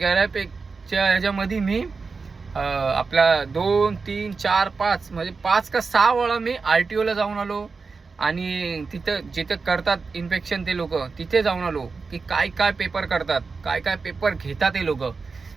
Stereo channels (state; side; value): quieter; left; 4.6 dB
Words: ह्याच्यामध्ये मी आपला 2, 3, 4, 5 म्हणजे 5 का 6 वेळा मी RTOला जाऊन आलो आणि तिथं जिथे करतात इन्स्पेक्शन ते लोक, तिथे जाऊन आलो की काय पेपर करतात, काय पेपर घेतात ते लोक.